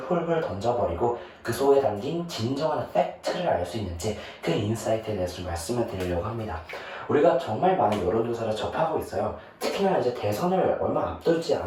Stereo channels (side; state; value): both; identical; correlation 1.00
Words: 던져버리고 그 속에 담긴 진정한 팩트를 알 수 있는지 그 인사이트에 대해서 좀 말씀을 드리려고 합니다. 우리가 정말 많은 여론조사를 접하고 있어요. 특히나 이제 대선을 얼마 앞두지